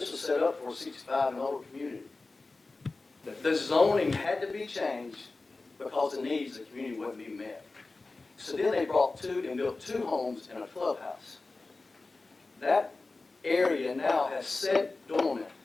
was set up for a 65 and older community. The zoning had to be changed because the needs of the community wouldn't be met. So then they built 2 homes and a clubhouse. That area now has sat dormant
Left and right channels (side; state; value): right; quieter; 3.5 dB